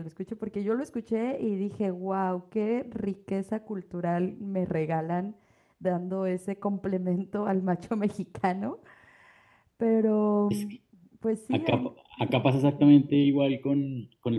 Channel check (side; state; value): both; identical; correlation 1.00